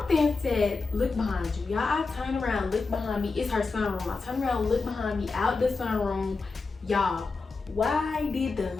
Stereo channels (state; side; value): quieter; right; 4.1 dB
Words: said, look behind you. Y'all, I turned around, look behind me. It's her sunroom. I turned around, look behind me, out the sunroom. Y'all, why did the